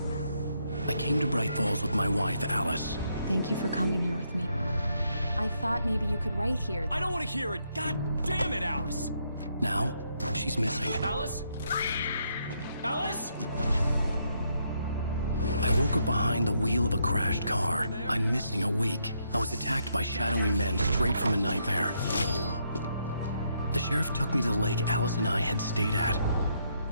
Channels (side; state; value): both; inverted; correlation -0.76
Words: I came to Brajt Folsa with my wife, Alice. Thank you for coming here with me. I thought maybe you could write here. I don't want to hear it! God damn it, Alice! Now, she's missing. Alice? Alice? I woke up behind the wheel of a crashed car. I'm missing a week. I was attacked by shadowy men straight from a nightmare. The sheriff took me to the lake Alice and I had stayed at.